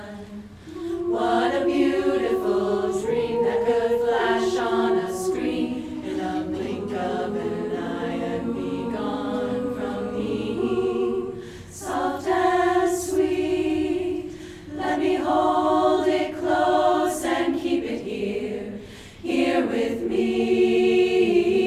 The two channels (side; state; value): both; identical; correlation 1.00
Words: What a beautiful dream that could flash on a screen in a blink of an eye and be gone from me. Soft and sweet, let me hold it close and keep it here, here with me.